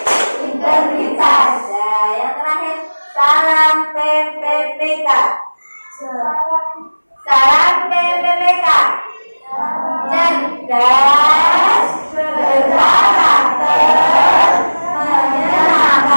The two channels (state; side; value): inverted; both; correlation -1.00